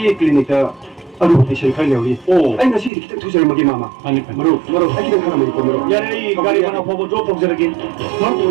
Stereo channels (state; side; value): drops out; left; at 2.9 s